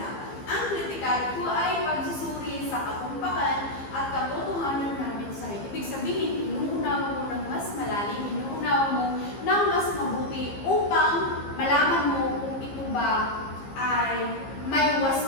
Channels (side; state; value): right; late; 15 ms